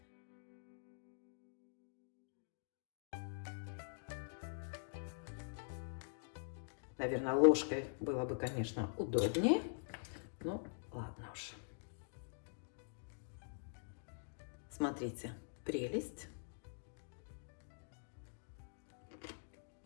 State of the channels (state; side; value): silent; right; digital silence